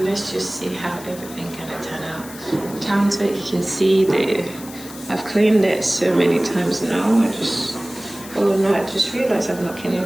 let's just see how everything gonna turn out. The counter, you can see I've cleaned it so many times now. I just realized I've not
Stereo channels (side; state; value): left; noise; hiss, 16 dB below the sound